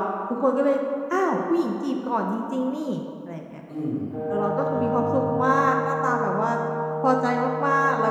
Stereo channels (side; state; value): both; identical; correlation 1.00